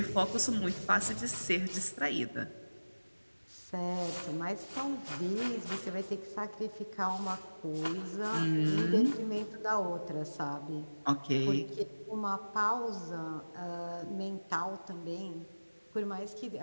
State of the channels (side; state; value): both; inverted; correlation -1.00